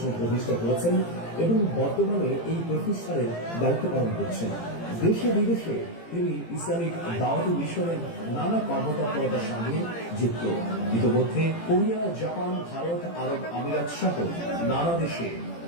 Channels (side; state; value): right; late; 18 ms